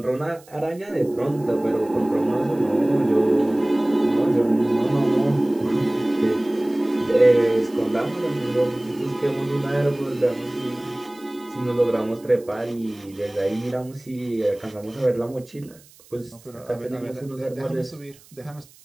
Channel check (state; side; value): noise; right; hiss, 26 dB below the sound